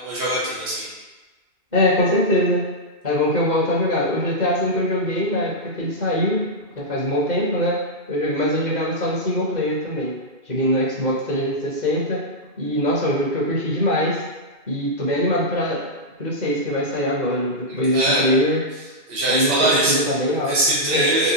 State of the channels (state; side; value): late; left; 3.1 ms